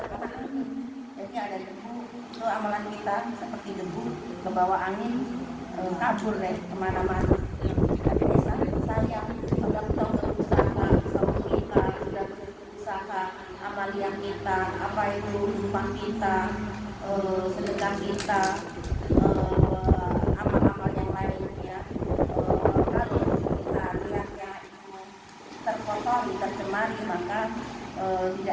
angin. Jadi ada debu, itu amalan kita seperti debu ke bawah angin, kabur deh kemana-mana. Tapi sayang, sudah kita berusaha, sama kita sudah berusaha, amalan kita, apa itu rumah kita, sedekah kita, amal-amal yang lainnya, kalau kita lihatnya itu terkotori, tercemari, maka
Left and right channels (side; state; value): both; identical; correlation 1.00